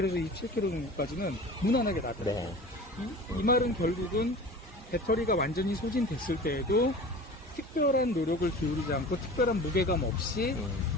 27km 정도까지는 무난하게 나가요. 네. 이 말은 결국은 배터리가 완전히 소진됐을 때에도 특별한 노력을 기울이지 않고 특별한 무게감 없이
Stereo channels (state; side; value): normal; both; correlation 0.38